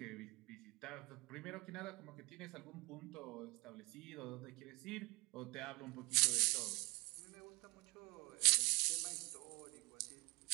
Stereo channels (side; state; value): left; quieter; 25.7 dB